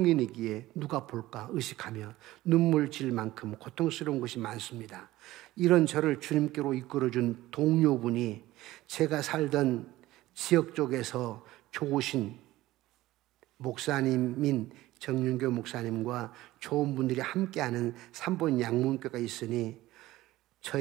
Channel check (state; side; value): quieter; left; 16.8 dB